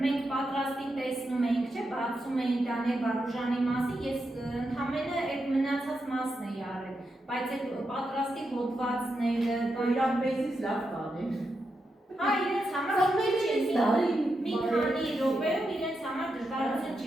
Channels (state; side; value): normal; both; correlation 0.86